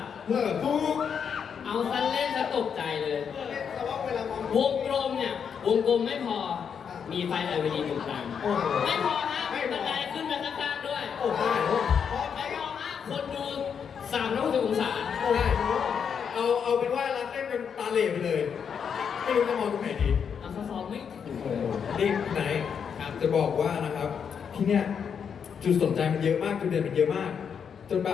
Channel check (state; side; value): quieter; right; 7.1 dB